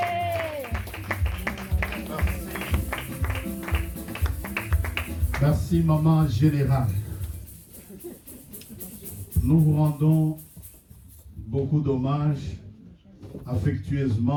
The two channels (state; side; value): identical; both; correlation 1.00